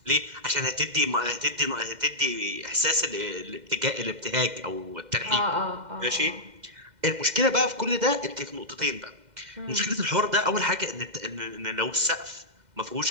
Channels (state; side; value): late; left; 2.1 ms